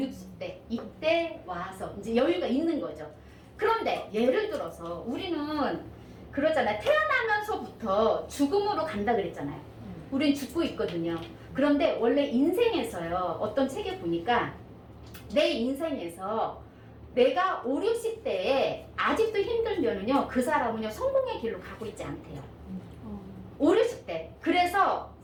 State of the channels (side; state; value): both; identical; correlation 1.00